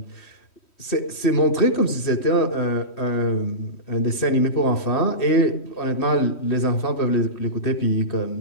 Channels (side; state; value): right; late; 3.1 ms